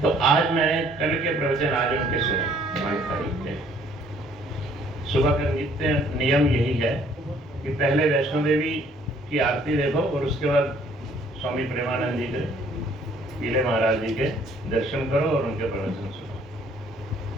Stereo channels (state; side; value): normal; both; correlation 0.61